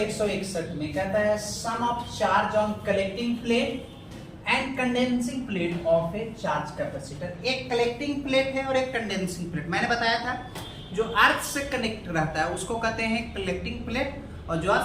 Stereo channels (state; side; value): identical; both; correlation 1.00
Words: में, कहता है sum of charge on collecting plate and condensing plate of a charge capacitor. एक कलेक्टिंग प्लेट है और एक कंडेंसिंग प्लेट। मैंने बताया था जो अर्थ से कनेक्ट रहता है उसको कहते हैं कलेक्टिंग प्लेट, और जो